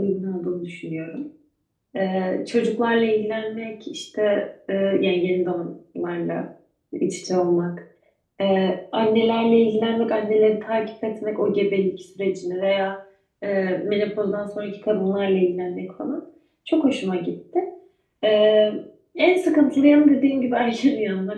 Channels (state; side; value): identical; both; correlation 1.00